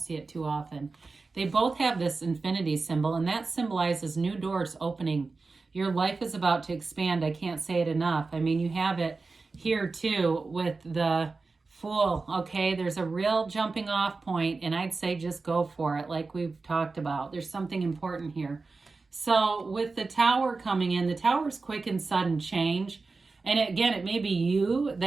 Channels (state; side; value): quieter; left; 4.0 dB